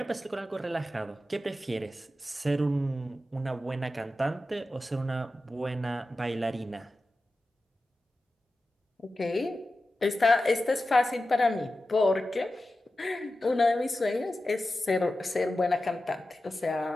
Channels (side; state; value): both; normal; correlation 0.93